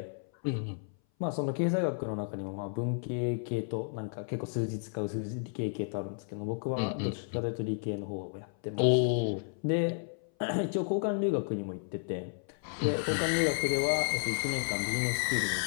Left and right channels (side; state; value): right; silent; 56 dB below the other